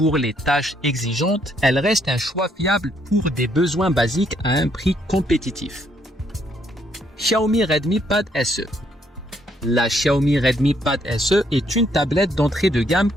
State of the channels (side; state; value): both; normal; correlation 0.71